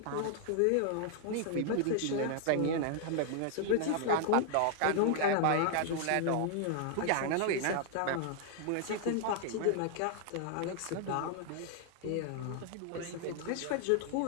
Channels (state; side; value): different; both; correlation 0.00